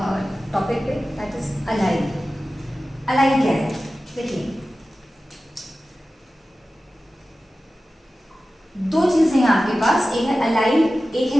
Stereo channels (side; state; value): both; normal; correlation 0.95